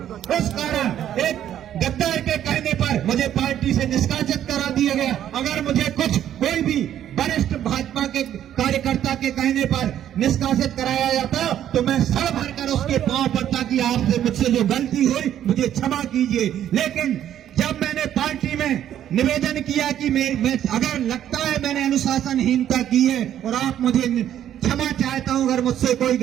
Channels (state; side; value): quieter; left; 10.9 dB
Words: उस कारण एक गद्दार के कहने पर मुझे पार्टी से निष्कासित करा दिया गया। अगर मुझे कोई भी वरिष्ठ भाजपा के कार्यकर्ता के कहने पर निष्कासित कराया जाता तो मैं सर भरकर उसके पांव पड़ता कि आपसे मुझसे जो गलती हुई मुझे क्षमा कीजिए। लेकिन जब मैंने पार्टी में निवेदन किया कि मैं अगर लगता है मैंने अनुशासनहीनता की है और आप मुझे क्षमा चाहता हूं अगर मुझसे कोई